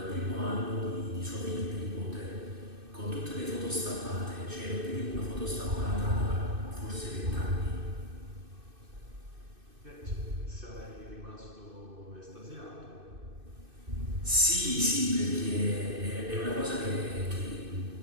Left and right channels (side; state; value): left; late; 2.6 ms